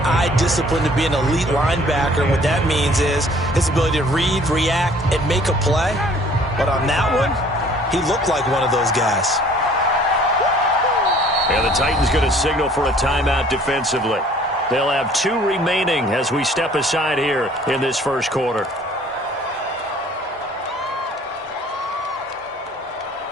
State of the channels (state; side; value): normal; both; correlation 0.55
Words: eye discipline to be an elite linebacker. And what that means is his ability to read, react, and make a play. But on that one, he looked like one of those guys. And the Titans going to signal for a timeout defensively. They'll have 2 remaining as we step aside here in this first quarter.